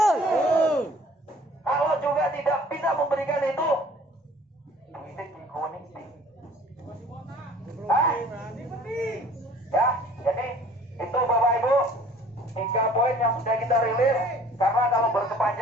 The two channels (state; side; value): normal; both; correlation 0.52